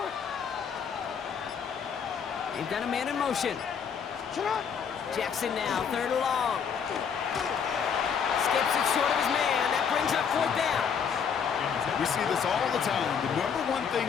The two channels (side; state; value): right; quieter; 7.0 dB